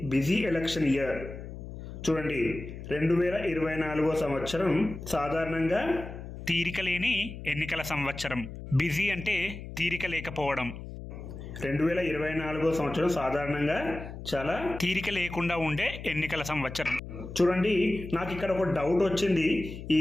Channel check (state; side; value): noise; left; hum, 11 dB below the sound